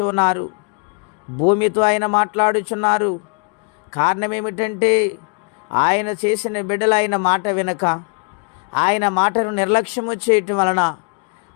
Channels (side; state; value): right; quieter; 36.2 dB